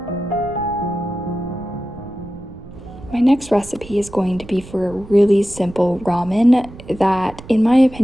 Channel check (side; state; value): right; noise; rumble, 17 dB below the sound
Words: My next recipe is going to be for a really simple ramen that, in my